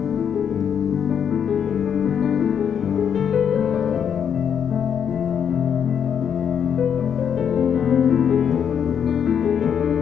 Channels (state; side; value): quieter; right; 8.0 dB